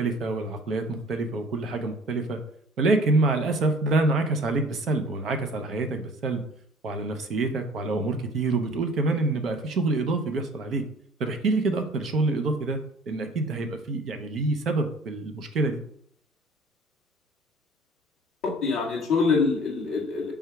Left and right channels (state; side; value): normal; both; correlation 0.50